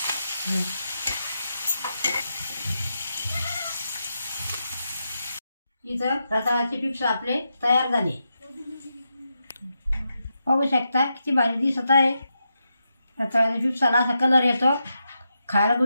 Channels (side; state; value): both; inverted; correlation -0.86